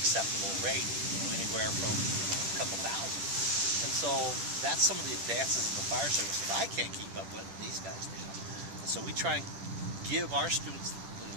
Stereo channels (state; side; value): late; left; 10 ms